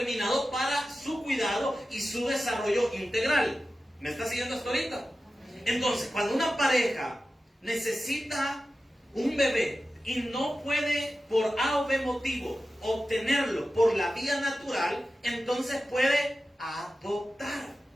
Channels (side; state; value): both; normal; correlation 0.94